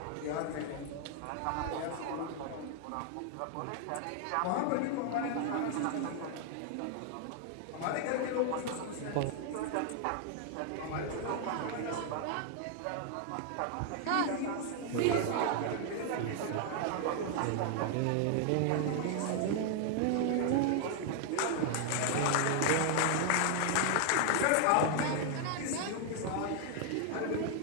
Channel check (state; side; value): different; both; correlation 0.00